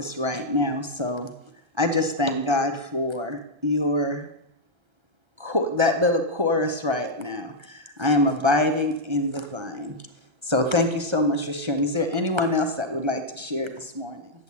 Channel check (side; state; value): left; late; 1.3 ms